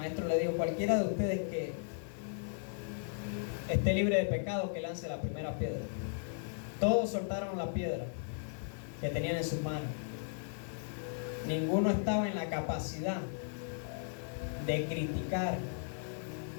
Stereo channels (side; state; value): right; silent; digital silence